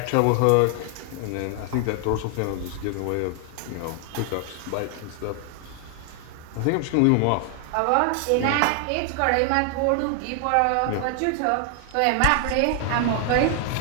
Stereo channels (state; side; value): different; both; correlation 0.00